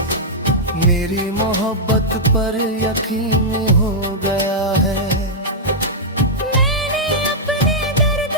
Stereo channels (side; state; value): both; normal; correlation -0.08